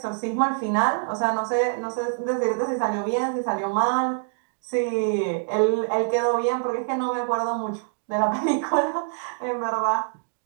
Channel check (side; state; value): left; silent; digital silence